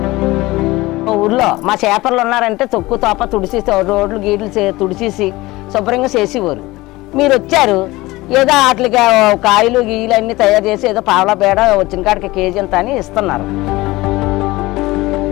ఊర్లో మా చేపర్లు ఉన్నారంటే తొక్కు తోప తుడిసి రోడ్లు గీట్లు తుడిచేసి శుభ్రంగా చేసేవారు. మీరు వచ్చారు, ఏదో వాటికి కాయలు గీయలు అన్నీ తయారు చేసి ఏదో పావలా బేడ వచ్చిన కాడికి కేజీ అంత అని ఇస్తున్నారు.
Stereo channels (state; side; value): quieter; right; 19.9 dB